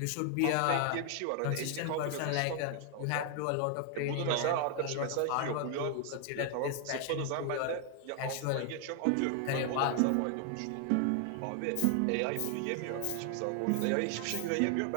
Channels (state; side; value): different; both; correlation 0.00